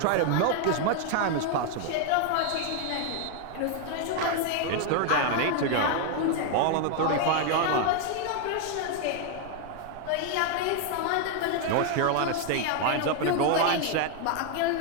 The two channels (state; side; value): different; both; correlation 0.01